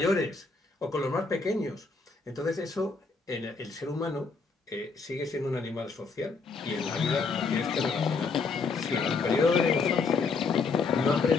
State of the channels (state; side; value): quieter; right; 4.5 dB